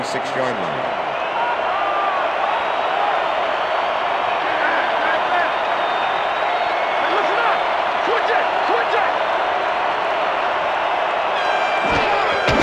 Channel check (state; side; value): identical; both; correlation 1.00